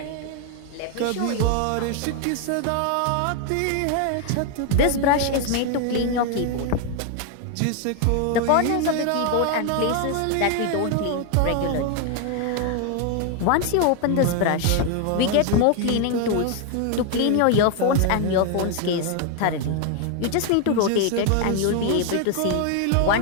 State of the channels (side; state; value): both; different; correlation 0.01